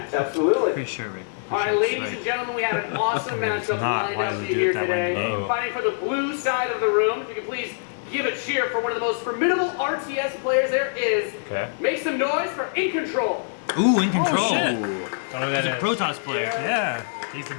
Absolutely. All right, ladies and gentlemen, we have an awesome matchup lined up for you here today. Fighting for the blue side of the room. If you could please give a cheer for one of the most formidable RTS players there is. Okay. Make some noise for In Control. Ooh, In Control. Oh, shit. He's a Protoss player. Yeah. He's the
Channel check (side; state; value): right; silent; 61 dB below the other